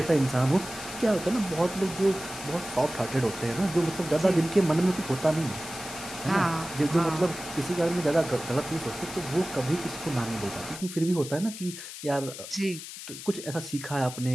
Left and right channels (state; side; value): noise; left; hiss, 11 dB below the sound